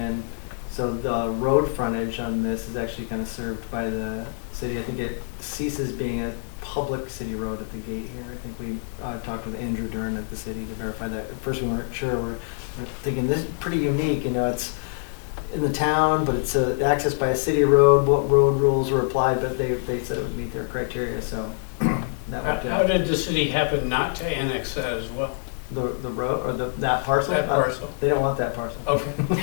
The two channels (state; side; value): silent; right; digital silence